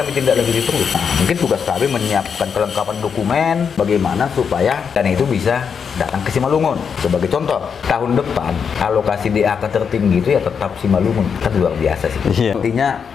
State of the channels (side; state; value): right; quieter; 6.6 dB